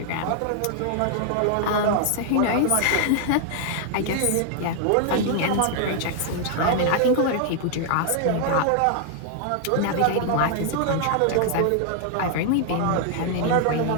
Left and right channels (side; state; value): both; different; correlation 0.00